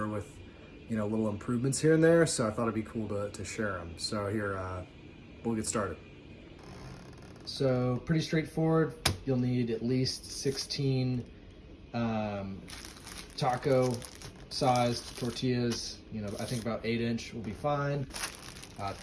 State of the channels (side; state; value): both; identical; correlation 1.00